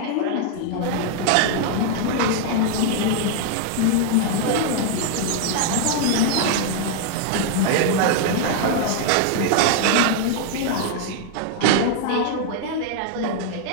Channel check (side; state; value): both; different; correlation 0.00